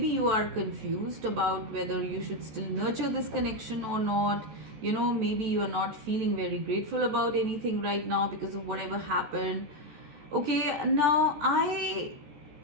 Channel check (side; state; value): left; late; 14 ms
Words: you are confused about whether you should still nurture this connection or not. Maybe you are not feeling very grateful about anything right now because of whatever happened. Okay, now I